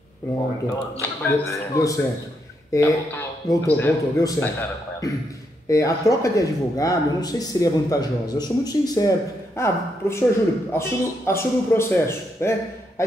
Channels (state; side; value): normal; both; correlation 0.79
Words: Pronto, deu certo. Voltou, deu certo. A troca de advogado, eu não sei se seria vantajosa. Eu sou muito sincero. Professor Júlio, assume o processo, né? Aí